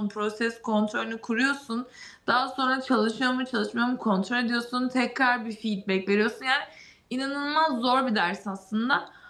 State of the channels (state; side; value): identical; both; correlation 1.00